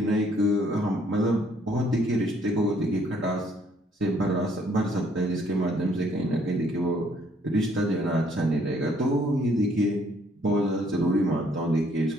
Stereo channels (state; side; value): normal; both; correlation 0.64